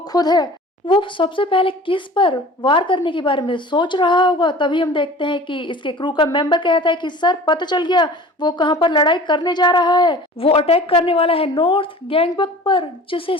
है। वो सबसे पहले किस पर वार करने के बारे में सोच रहा होगा। तभी हम देखते हैं कि इसके क्रू का मेंबर कहता है कि सर, पता चल गया, वो कहां पर लड़ाई करने जा रहा है। वो अटैक करने वाला है नॉर्थ गैंगबक पर। जिसे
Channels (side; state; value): both; normal; correlation 0.42